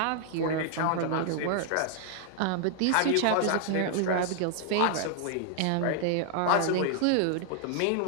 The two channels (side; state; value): both; different; correlation 0.00